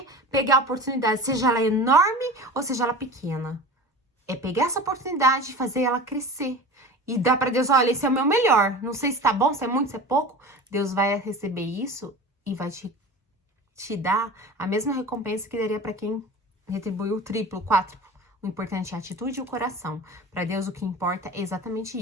pegar a oportunidade, seja ela enorme ou seja ela pequena. É pegar essa oportunidade e fazer ela crescer. E dar para Deus, olha, esse é o meu melhor. Não sei se tá bom, se é muito, se é pouco. Deus vai receber isso e vai te dar a mesma recompensa que daria para quem retribuiu o triplo, o quádruplo. O importante é a atitude e o coração. Para Deus, o que importa é exatamente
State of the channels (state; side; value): normal; both; correlation 0.35